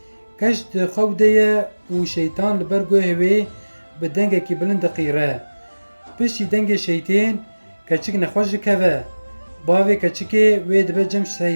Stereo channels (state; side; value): inverted; both; correlation -1.00